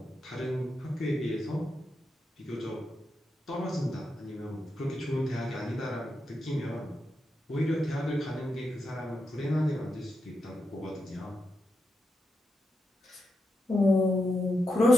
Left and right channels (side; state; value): both; normal; correlation 0.86